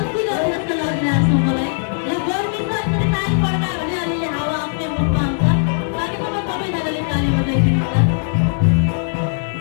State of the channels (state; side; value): silent; right; digital silence